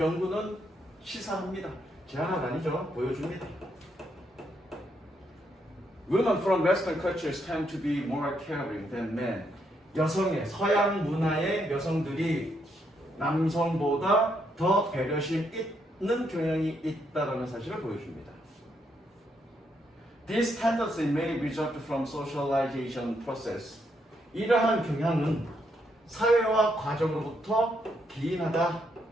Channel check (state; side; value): normal; both; correlation 0.76